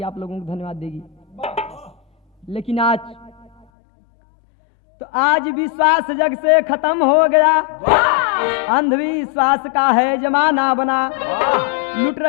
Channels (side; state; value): right; drops out; at 3.7 s